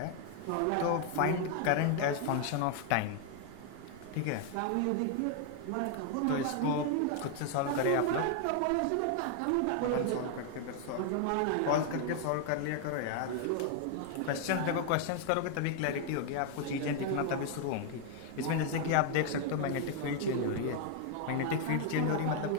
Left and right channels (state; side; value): different; both; correlation 0.00